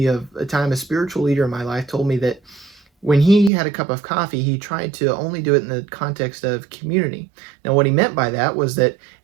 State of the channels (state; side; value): drops out; left; at 3.5 s